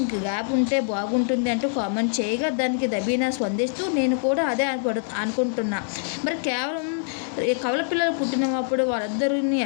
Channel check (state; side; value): silent; right; 62 dB below the other